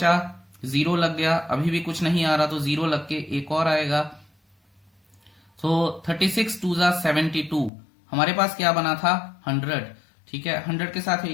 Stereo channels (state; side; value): drops out; right; at 7.7 s